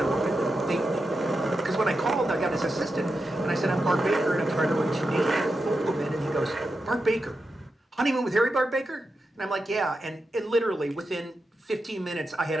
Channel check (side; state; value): both; normal; correlation 0.88